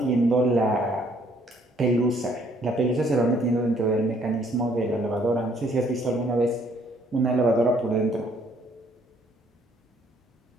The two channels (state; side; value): normal; both; correlation 0.64